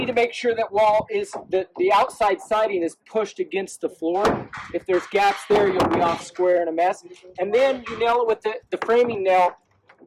to make sure that wall is the outside siding is pushed against the floor. If there's gaps there, you'll be off square and a mess. And then you nail it with the framing nail.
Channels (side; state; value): both; identical; correlation 1.00